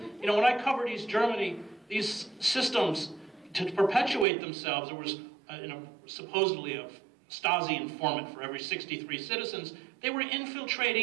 I covered East Germany, these systems to perpetuate themselves, there was supposedly a Stasi informant for every 63 citizens. They were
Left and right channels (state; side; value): drops out; left; at 4.2 s